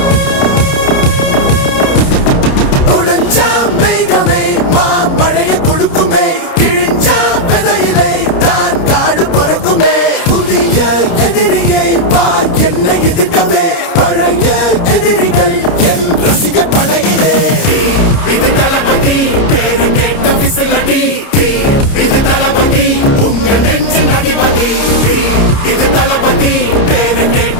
மேகமே மழைய கொடுக்குமே கிழிஞ்சா விதையிலே தான் காடு பொறுக்குமே. புதிய எதிரியை வா என்ன எதிர்க்கவே பழைய எதிரிகள் என் ரசிகர் படையிலே. இது தளபதி பேரு கேட்ட விசிலடி. இது தளபதி உங்க நெஞ்சு அதிபதி. இது தளபதி பேரு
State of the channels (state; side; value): late; right; 30 ms